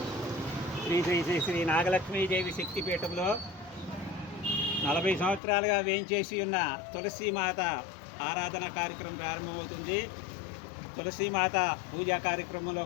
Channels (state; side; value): drops out; right; at 5.4 s